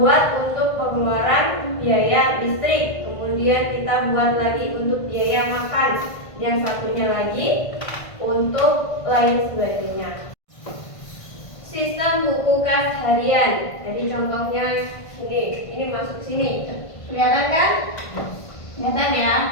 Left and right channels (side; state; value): right; late; 1.5 ms